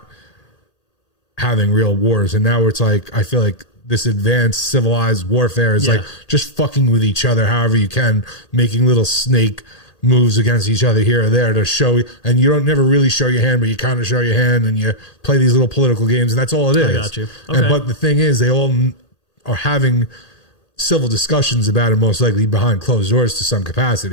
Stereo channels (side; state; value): right; late; 1.8 ms